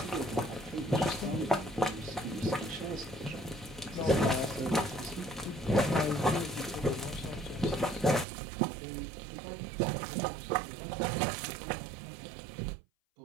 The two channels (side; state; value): left; drops out; at 8.2 s